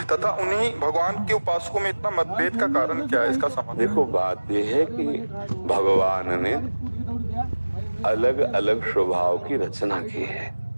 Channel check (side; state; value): both; inverted; correlation -1.00